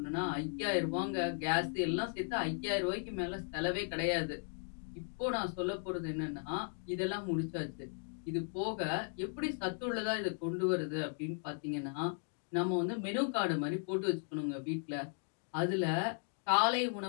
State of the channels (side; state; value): right; silent; 53 dB below the other